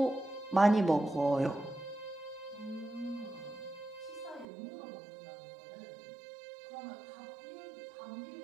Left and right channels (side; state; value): left; drops out; at 4.5 s